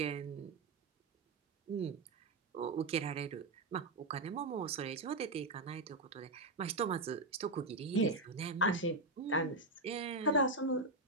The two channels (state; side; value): quieter; left; 3.1 dB